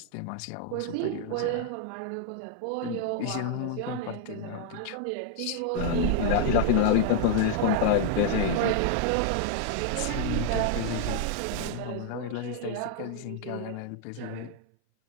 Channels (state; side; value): different; both; correlation 0.00